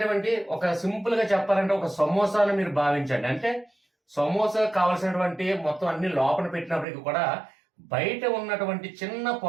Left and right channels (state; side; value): drops out; left; at 6.9 s